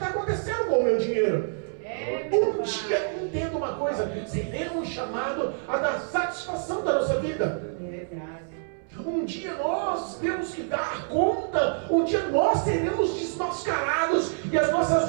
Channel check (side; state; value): left; silent; 60 dB below the other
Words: acontecendo com o meu dinheiro. Um dia, entenda uma coisa, seremos chamados a dar satisfação da nossa vida. Verdade. Um dia nós temos que dar conta, um dia nós seremos desmascarados e as